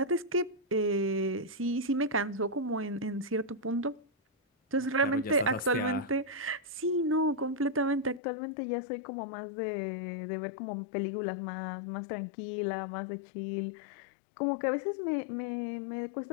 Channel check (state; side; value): drops out; right; at 8.2 s